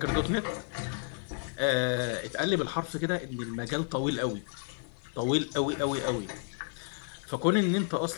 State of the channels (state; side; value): silent; right; 57 dB below the other